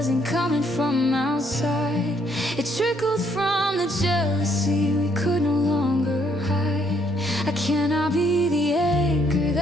coming from outside. It trickled from the jealousy we could no longer hide. I cannot be the anchor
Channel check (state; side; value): normal; both; correlation 0.69